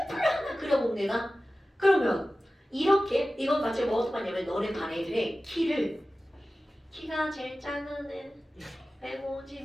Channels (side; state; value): both; normal; correlation 0.96